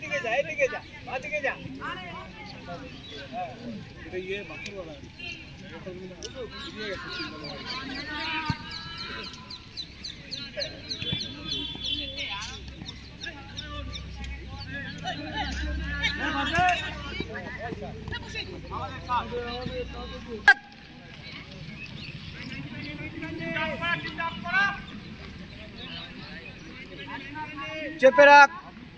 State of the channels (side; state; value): both; identical; correlation 1.00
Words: যা, এইদিকে যা, বাদিকে যা। এটা ইয়ে বাকি বলা। চেপে রাখ,